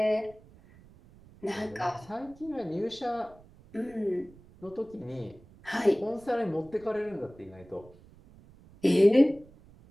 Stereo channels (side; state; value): right; noise; rumble, 24 dB below the sound